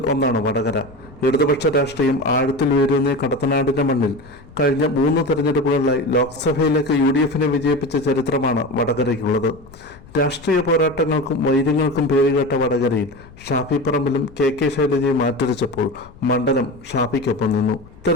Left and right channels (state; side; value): noise; left; rumble, 22 dB below the sound